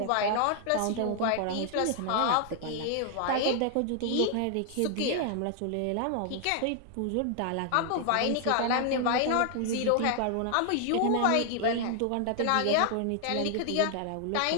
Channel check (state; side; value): different; both; correlation 0.00